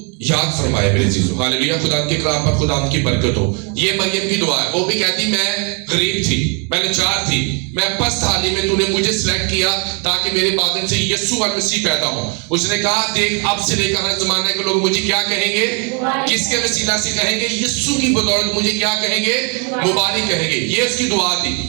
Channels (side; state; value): left; quieter; 36.1 dB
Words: याद फरमाए। मेरे चीजों हालेलुया, खुदा के कलाम पर खुदा की बरकत हो। ये मरियम की दुआ है। वो भी कहती मैं गरीब थी, मैं लाचार थी, मैं पस्त हाली में तूने मुझे सिलेक्ट किया ताकि मेरे बादल से यीशु मसीह पैदा हो। उसने कहा देख अब से लेकर हर जमाने के लोग मुझे क्या कहेंगे, किसके वसीला से कहेंगे, यीशु की बदौलत मुझे क्या कहेंगे, मुबारक कहेंगे। ये उसकी दुआ थी।